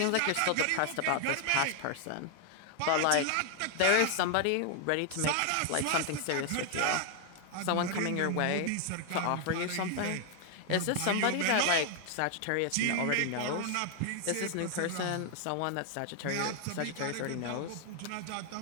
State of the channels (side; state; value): both; different; correlation 0.00